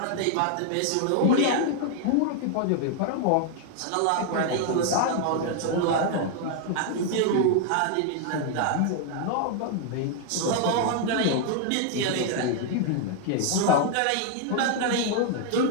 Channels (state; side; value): different; both; correlation 0.00